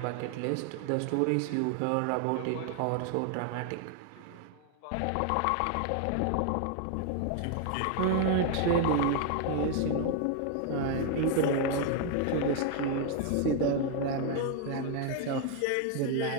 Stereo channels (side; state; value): both; different; correlation 0.00